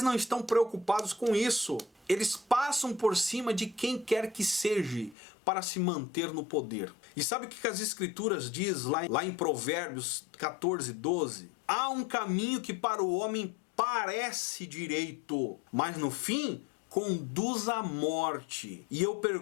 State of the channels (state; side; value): drops out; right; at 5.2 s